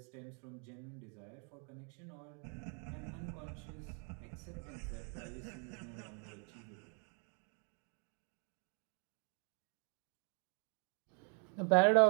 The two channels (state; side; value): quieter; left; 40.0 dB